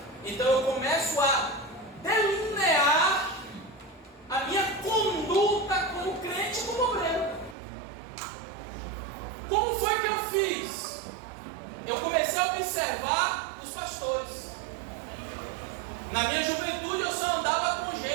Então eu começo a delinear a minha conduta como crente e como obreiro. Como foi que eu fiz? Eu comecei a observar os pastores. Na minha juventude eu só andava com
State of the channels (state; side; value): drops out; left; at 7.6 s